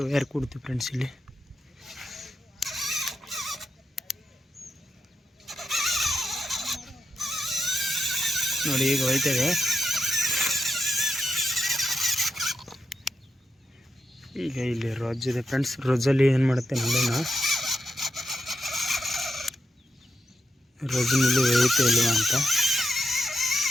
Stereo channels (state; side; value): normal; both; correlation 0.86